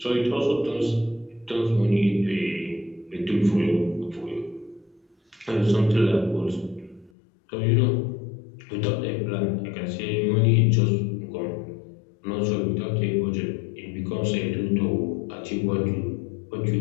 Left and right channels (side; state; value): right; drops out; at 7.1 s